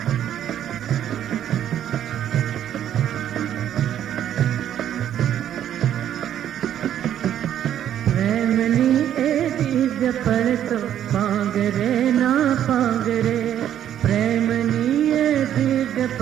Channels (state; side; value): quieter; left; 10.6 dB